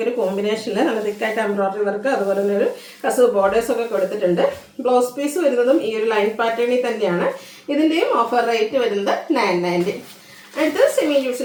ഒരു കോമ്പിനേഷനിൽ നല്ല തിക്കായിട്ട് എംബ്രോയിഡറി വർക്ക് അതുപോലെ തന്നെ ഒരു കസവ് ബോർഡേഴ്സ് ഒക്കെ കൊടുത്തിട്ടുണ്ട്. ബ്ലൗസ് പീസ് വരുന്നതും ഈ ഒരു ലൈൻ പാറ്റേണിൽ തന്നെയാണ്. ഇതിൻ്റെയും ഓഫർ റേറ്റ് വരുന്നത് 990. അടുത്തത് സെമി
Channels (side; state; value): both; identical; correlation 1.00